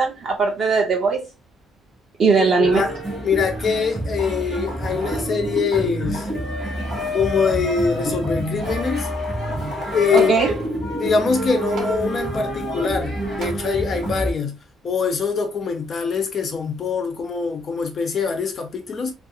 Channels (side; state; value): both; normal; correlation 0.69